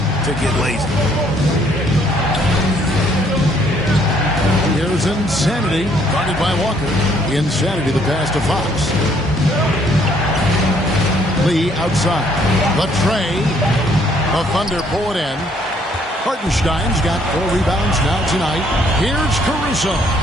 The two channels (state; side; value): normal; both; correlation 0.65